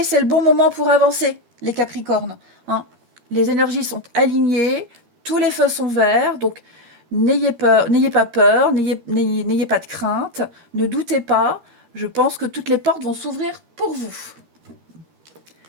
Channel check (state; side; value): late; left; 13 ms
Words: c'est le bon moment pour avancer, les capricornes. Hein. Les énergies sont alignées, tous les feux sont verts, donc n'ayez pas peur, n'ayez pas de crainte, ne doutez pas. Je pense que toutes les portes vont s'ouvrir pour vous.